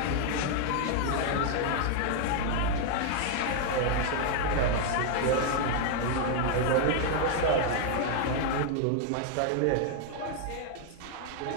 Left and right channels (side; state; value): both; different; correlation 0.00